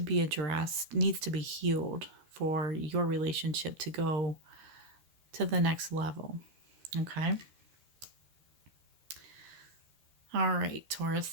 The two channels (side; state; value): left; late; 13 ms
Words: addressed, needs to be healed for your relationship to go to the next level. Okay. All right, Taurus.